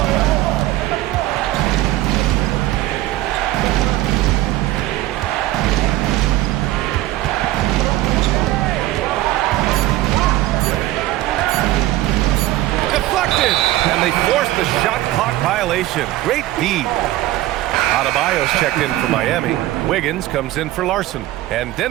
And they forced the shot clock violation. Great D. Adebayo's checked in for Miami. Wiggins comes in for Larson. And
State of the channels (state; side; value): quieter; left; 16.1 dB